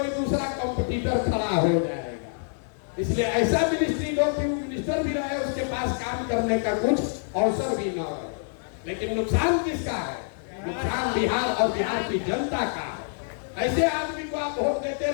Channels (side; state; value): right; silent; digital silence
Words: दूसरा कंपटीटर खड़ा हो जाएगा। इसलिए ऐसा मिनिस्ट्री दो कि वो मिनिस्टर भी रहे, उसके पास काम करने का कुछ अवसर भी न रहे। लेकिन नुकसान किसका है? नुकसान बिहार और बिहार की जनता का है। ऐसे आदमी को आप वोट देते